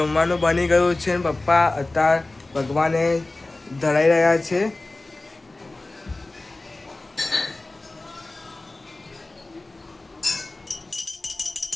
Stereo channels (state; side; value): quieter; right; 3.0 dB